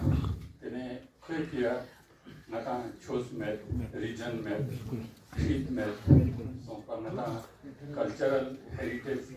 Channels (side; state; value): both; identical; correlation 1.00